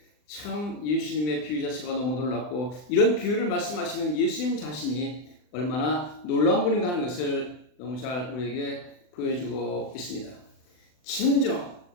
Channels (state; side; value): late; right; 39 ms